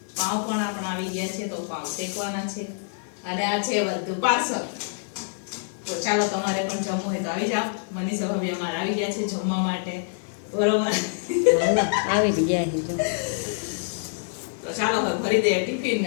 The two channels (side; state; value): right; silent; 56 dB below the other